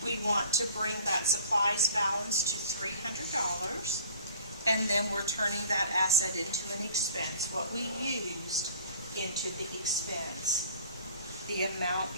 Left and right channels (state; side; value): inverted; both; correlation -0.49